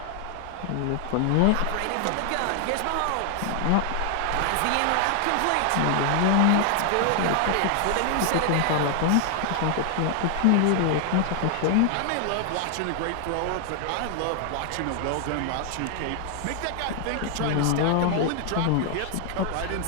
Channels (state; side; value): different; both; correlation 0.00